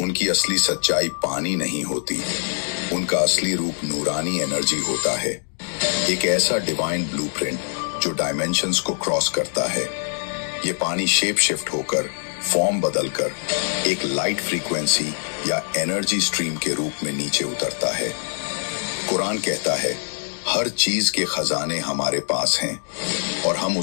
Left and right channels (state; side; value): silent; right; 63 dB below the other